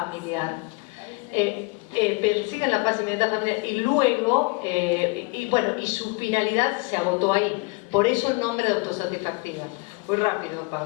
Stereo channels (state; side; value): quieter; right; 28.6 dB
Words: persiguen la paz inmediata familiar y luego, y su finalidad se agotó ahí. Por eso el nombre de autosatisfactiva. Muy rápido,